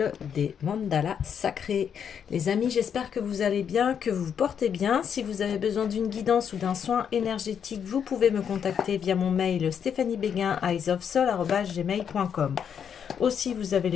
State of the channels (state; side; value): quieter; right; 7.8 dB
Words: des mandalas sacrés. Les amis, j'espère que vous allez bien, que vous vous portez bien. Si vous avez besoin d'une guidance ou d'un soin énergétique, vous pouvez me contacter via mon mail stéphaniebeguin@eyesofsoul@gmail.com. Aussi, vous avez